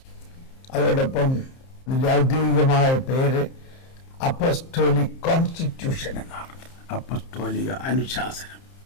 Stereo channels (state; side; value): late; right; 30 ms